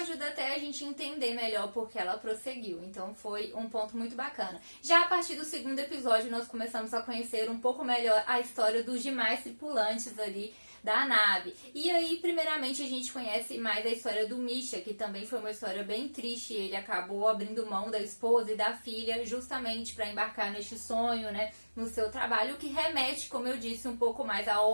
até a gente entender melhor porque ela prosseguiu. Então foi um ponto muito bacana. Já a partir do segundo episódio, nós começamos a conhecer um pouco melhor a história dos demais tripulantes ali da nave. E aí, primeiramente, a gente conhece mais a história do Misha, que também foi uma história bem triste. Ele acabou abrindo mão da esposa e da filha justamente para embarcar neste sonho, né, no seu trabalho, o que remete, como eu disse, um pouco mais a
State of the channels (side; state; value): both; inverted; correlation -1.00